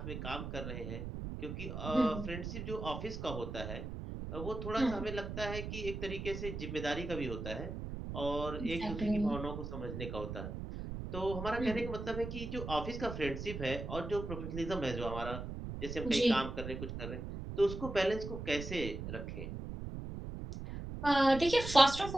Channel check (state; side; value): noise; right; rumble, 6 dB below the sound